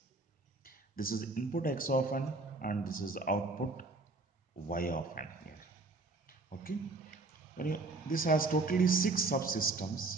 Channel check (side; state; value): left; quieter; 3.4 dB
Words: This is input X of n and this is output Y of n here. Okay. This has totally 6